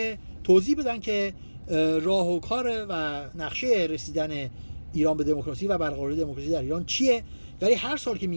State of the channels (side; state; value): both; inverted; correlation -1.00